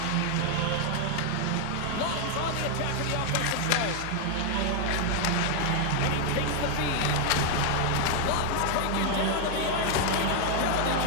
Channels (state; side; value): different; both; correlation 0.00